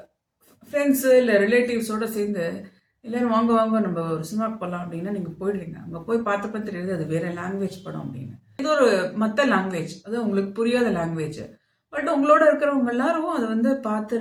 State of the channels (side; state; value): both; identical; correlation 1.00